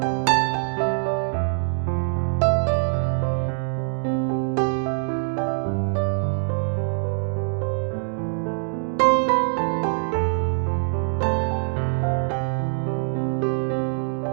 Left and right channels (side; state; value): left; silent; digital silence